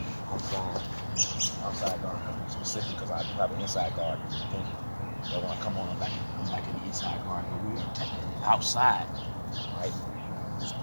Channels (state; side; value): inverted; both; correlation -1.00